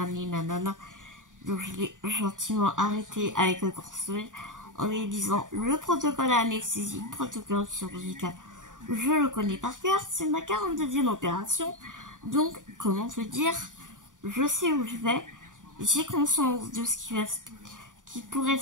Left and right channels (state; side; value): late; left; 0.88 ms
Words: nanana. Donc je l'ai gentiment arrêté avec un grand sourire en lui disant le protocole anesthésie, protocole chirurgical, je le connais par cœur, c'est ma 42e opération. Donc comment te dire, je sais où je vais, j'ai conscience de ce qui pourrait